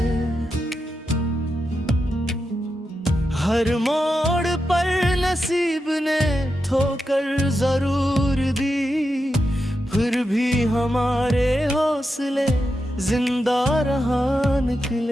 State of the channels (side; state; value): both; normal; correlation 0.88